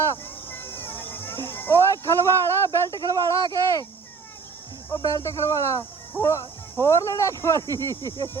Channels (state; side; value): quieter; left; 5.1 dB